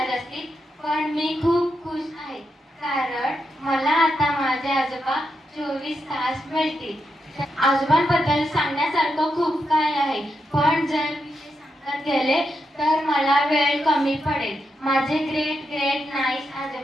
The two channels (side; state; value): both; normal; correlation 0.84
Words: असतील, पण मी खूप खुश आहे, कारण मला आता माझे आजोबा 24 तास मिळतील. आजोबांबद्दल सांगण्यासारखं खूप काय आहे, पण जर मी ते सांगत गेले तर मला वेळ कमी पडेल. माझे ग्रेट ग्रेट नाईस